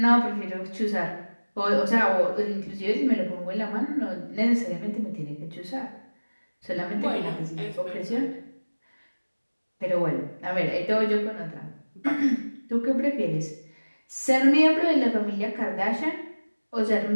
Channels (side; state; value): both; inverted; correlation -1.00